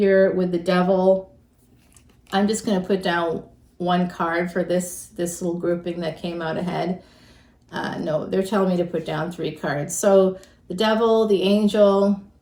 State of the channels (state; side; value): identical; both; correlation 1.00